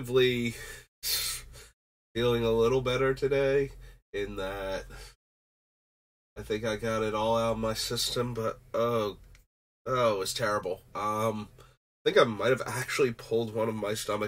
feeling a little better today in that I think I got it all out of my system, but it was terrible. I think I might have actually pulled one of my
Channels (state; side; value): identical; both; correlation 1.00